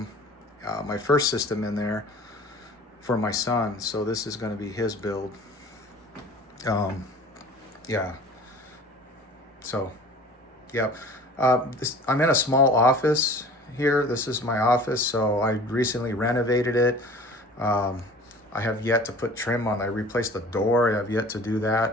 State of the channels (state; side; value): normal; both; correlation 0.44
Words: my first system, in there for my son. So this is going to be his build. Yeah. So, yeah. I'm in a small office here. This is my office. So I recently renovated it. I have yet to put trim on. I replaced the door. I have yet to do